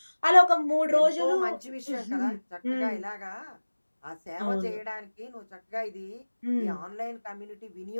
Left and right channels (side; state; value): both; inverted; correlation -1.00